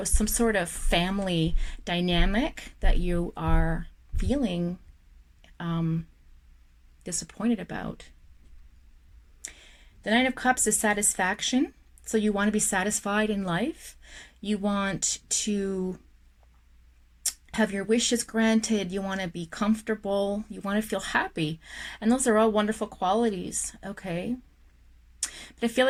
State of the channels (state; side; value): identical; both; correlation 1.00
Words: of family dynamic that you are feeling disappointed about. The Nine of Cups is satisfaction. So you want to be satisfied in life. You want to have your wishes granted. You want to be comfortable. You want to feel happy. And those are all wonderful qualities, okay? But I feel